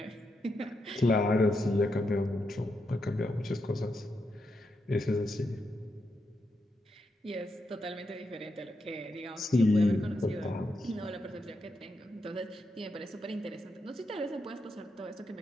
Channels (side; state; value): both; normal; correlation 0.84